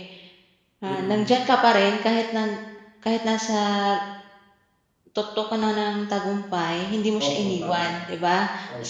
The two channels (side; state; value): both; identical; correlation 1.00